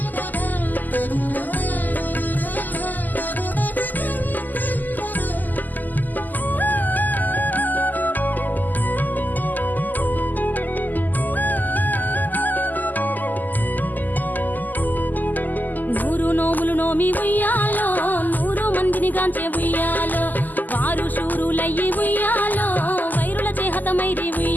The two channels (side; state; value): right; late; 0.084 ms